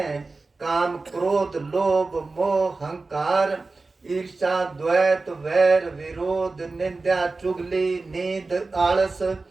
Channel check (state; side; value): quieter; left; 3.7 dB